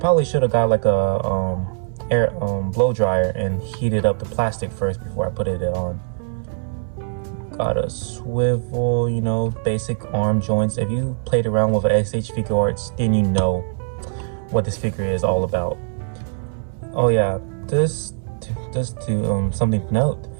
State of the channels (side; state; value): left; silent; 64 dB below the other